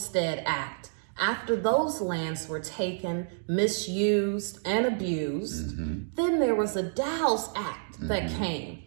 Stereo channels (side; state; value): left; silent; digital silence